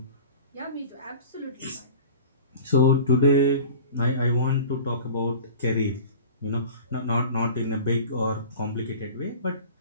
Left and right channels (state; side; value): inverted; both; correlation -0.40